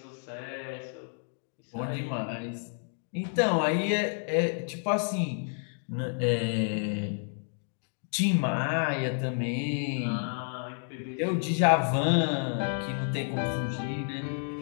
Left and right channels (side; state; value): right; silent; 58 dB below the other